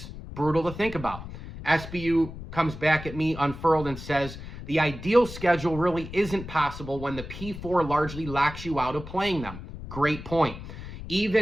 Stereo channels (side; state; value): left; noise; rumble, 11 dB below the sound